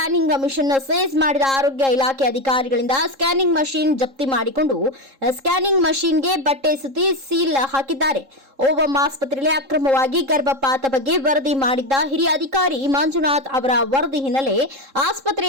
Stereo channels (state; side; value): late; left; 3.7 ms